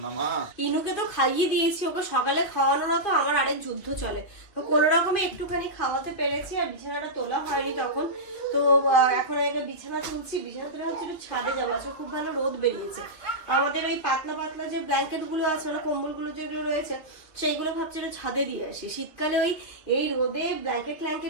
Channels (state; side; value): late; right; 2.5 ms